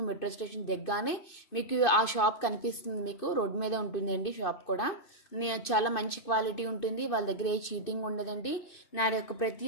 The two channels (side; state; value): right; late; 2.6 ms